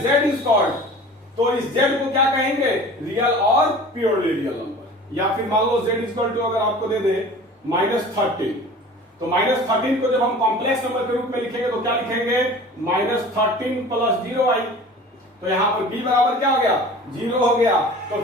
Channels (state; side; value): normal; both; correlation 0.42